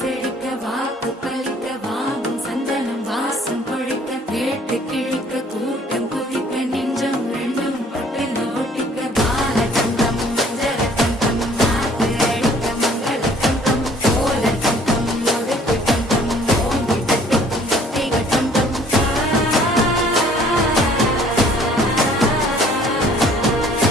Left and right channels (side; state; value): both; normal; correlation 0.57